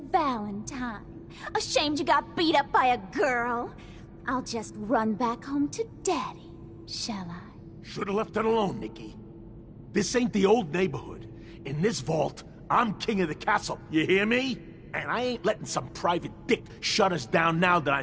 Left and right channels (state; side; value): identical; both; correlation 1.00